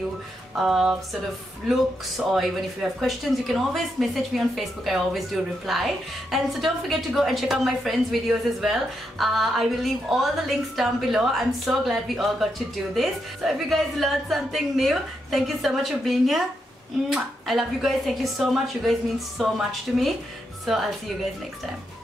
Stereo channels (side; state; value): both; normal; correlation 0.82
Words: sort of looks, or even if you have questions, you can always message me on Facebook. I always do reply. And so don't forget to go and check out my friends' videos as well. I will leave all the links down below. I'm so glad we all got to do this. So if you guys learned something new, thank you so much for being here. I love you guys. Thank you so much. You guys mean so much to me. So I'll see you guys next time.